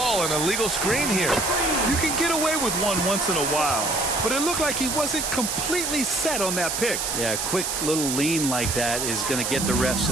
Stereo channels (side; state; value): right; noise; hiss, 1 dB below the sound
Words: an illegal screen here. You can get away with one once in a while, but it looked like he wasn't completely set on that pick. Yeah, a quick little lean like that is going to get the ref's